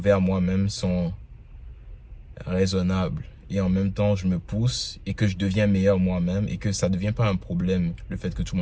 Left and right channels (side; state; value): both; identical; correlation 1.00